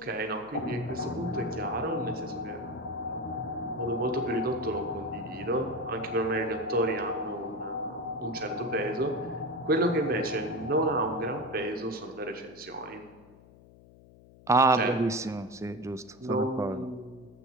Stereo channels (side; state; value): left; noise; hum, 23 dB below the sound